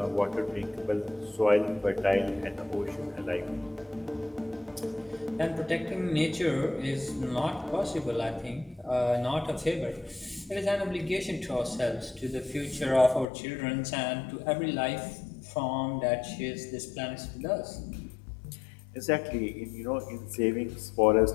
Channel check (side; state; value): right; drops out; at 13.2 s